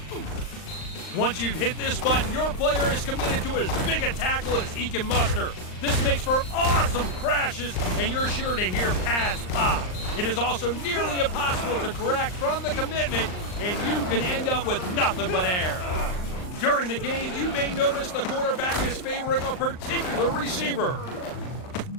Once you've hit this button, your player is committed to as big a tackle as he can muster. This makes for awesome crashes, and you're sure to hear pads pop. It is also nearly impossible to correct from the commitment, and you can end up with nothing but air. During the game, you may notice the quarterback is favoring a particular receiver.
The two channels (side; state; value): right; late; 39 ms